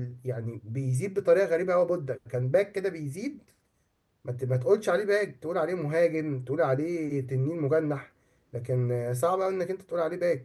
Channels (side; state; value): both; identical; correlation 1.00